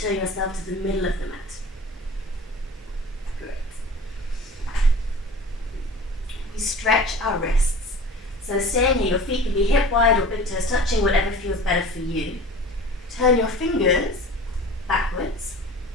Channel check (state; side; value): normal; both; correlation 0.40